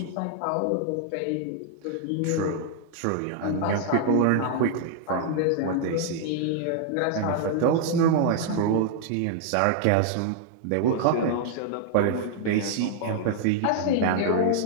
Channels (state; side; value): different; both; correlation -0.01